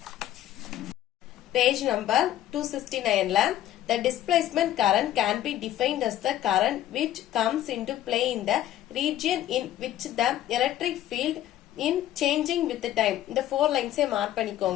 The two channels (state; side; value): quieter; right; 12.7 dB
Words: Page number 269 ல the displacement current can be defined as the current which comes into play in the region in which the electric field in changing with the time. இந்த 4 lines mark